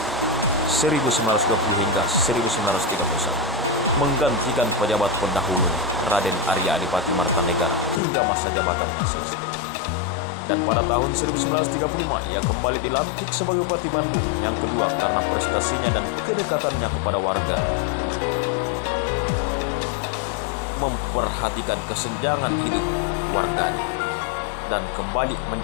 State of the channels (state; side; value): drops out; right; at 8.0 s